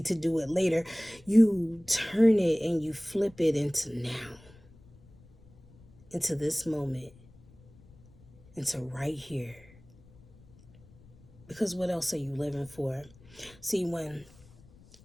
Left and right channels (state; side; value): noise; left; rumble, 25 dB below the sound